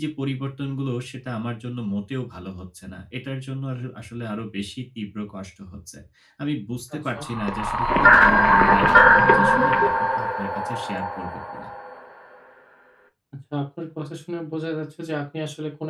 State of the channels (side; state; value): both; identical; correlation 1.00